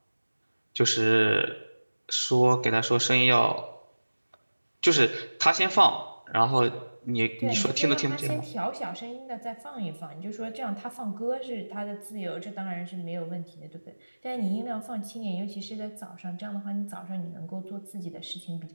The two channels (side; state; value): both; inverted; correlation -1.00